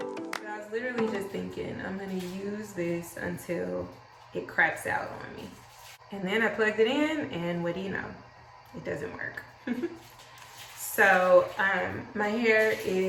I was literally just thinking, I'm gonna use this until it craps out on me. And then I plugged it in, and what do you know? It doesn't work. So my hair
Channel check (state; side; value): identical; both; correlation 1.00